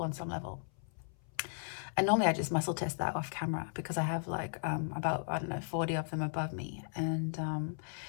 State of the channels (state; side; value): silent; right; 54 dB below the other